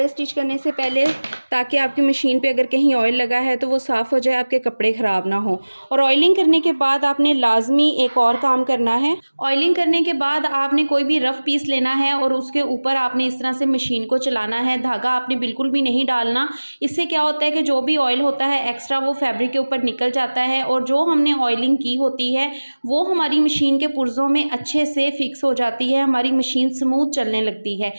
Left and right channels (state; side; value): inverted; both; correlation -1.00